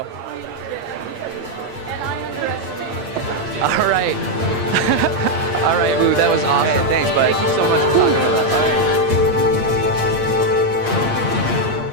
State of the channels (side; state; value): left; late; 8.6 ms